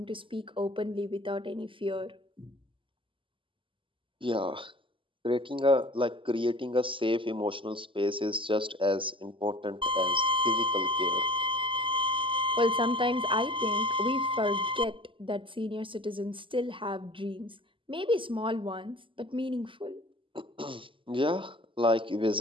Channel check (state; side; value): late; left; 0.25 ms